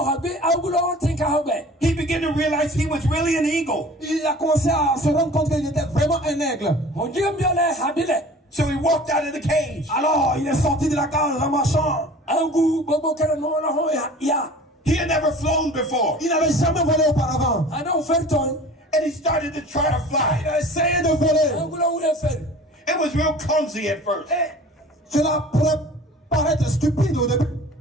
began to realize he was really an eagle. Il a commencé à se rendre compte qu'il était vraiment un aigle. So he walked out of the cage. Alors, il est sorti de la cage en marchant. He had never flown before. Il n'avait jamais volé auparavant. And he started to try to fly. Il a essayé de voler. It was real clumsy at first. Cela pourrait paraître stupide au début.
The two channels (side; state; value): both; normal; correlation 0.43